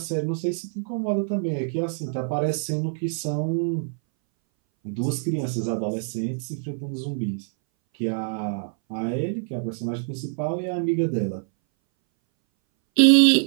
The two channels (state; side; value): silent; left; 60 dB below the other